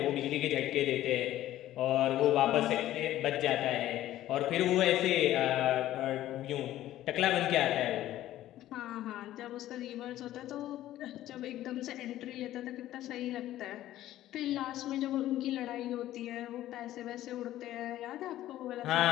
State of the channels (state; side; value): quieter; right; 13.9 dB